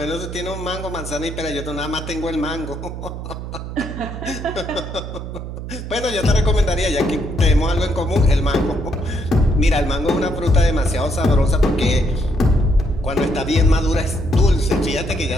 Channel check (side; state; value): right; noise; hum, 8 dB below the sound